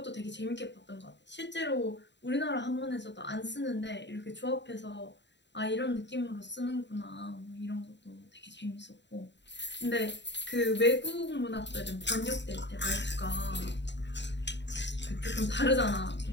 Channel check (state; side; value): late; right; 0.52 ms